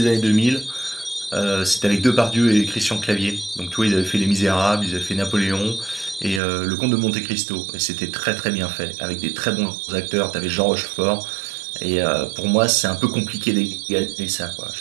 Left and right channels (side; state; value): left; drops out; at 6.4 s